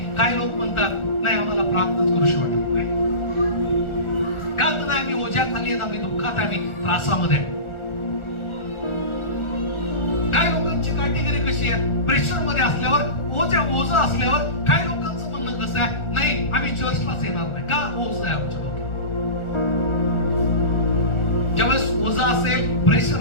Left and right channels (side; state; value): right; late; 1.4 ms